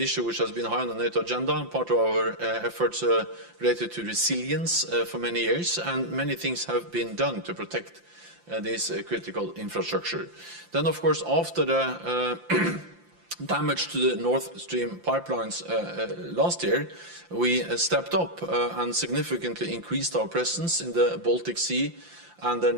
which has been high on the NATO agenda, part of our efforts related to resilience for many years, and many things have been done to protect this critical infrastructure. Then, of course, after the damage to the Nord Stream pipelines last year, we stepped up and significantly increased our presence in the Baltic Sea and the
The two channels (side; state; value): left; late; 5.8 ms